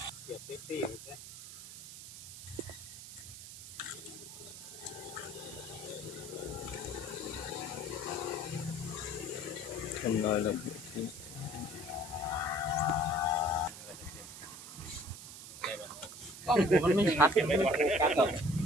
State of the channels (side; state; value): right; noise; hiss, 13 dB below the sound